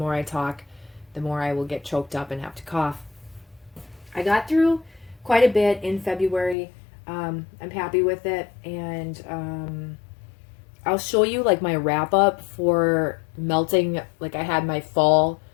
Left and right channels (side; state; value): right; drops out; at 6.6 s